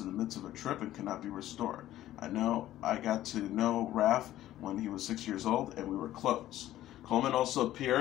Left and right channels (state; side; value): quieter; right; 13.8 dB